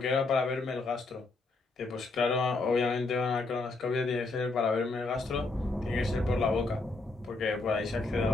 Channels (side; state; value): right; quieter; 3.5 dB